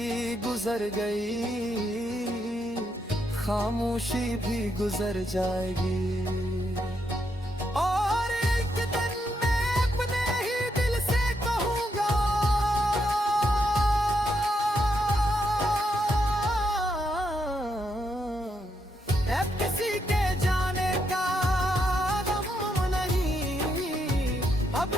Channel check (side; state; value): both; normal; correlation 0.79